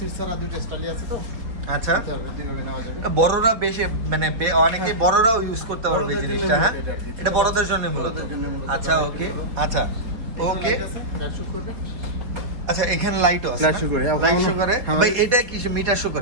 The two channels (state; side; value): late; left; 4.2 ms